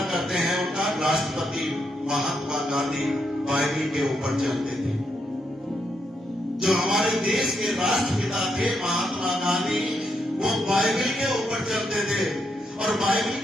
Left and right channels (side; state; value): both; normal; correlation 0.80